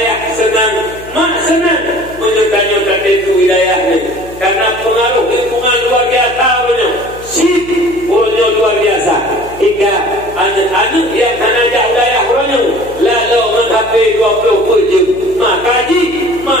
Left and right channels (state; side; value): noise; left; hum, 19 dB below the sound